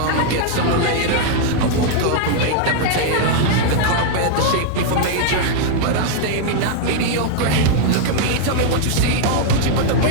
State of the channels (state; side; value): different; both; correlation -0.01